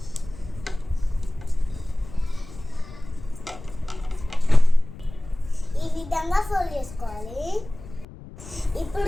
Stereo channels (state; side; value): noise; left; rumble, 16 dB below the sound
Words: ఈ విధంగా ఫోల్డ్ చేసుకోవాలి.